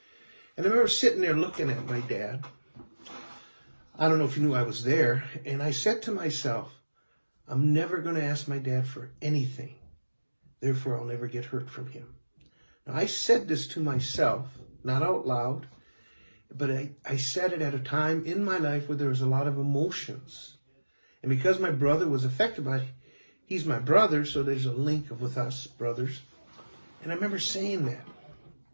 And I remember sitting there looking at my dad. I don't know if you knew I was there, and I said to myself, I'm never going to ask my dad for anything. Therefore, I'll never get hurt from him. Now, I said this to myself, not out loud, but I said it at a time in my life where there was a lot of emotions. And because my brother was affected by it, he's my brother, so there's a link with us brothers. And I remember saying that.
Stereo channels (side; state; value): both; inverted; correlation -1.00